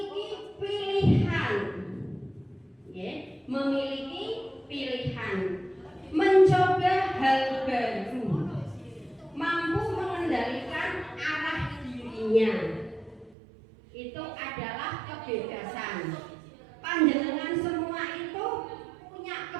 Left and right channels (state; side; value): drops out; left; at 13.4 s